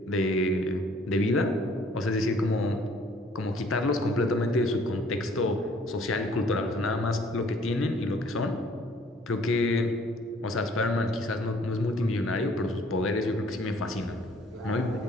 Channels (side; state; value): both; normal; correlation 0.58